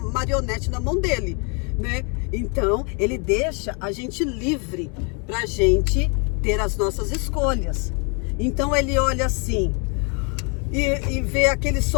na mão dele, né? Então, ele deixa a gente livre para a gente ter as nossas escolhas. Então, ele olha assim e vê aquele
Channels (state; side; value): quieter; right; 35.4 dB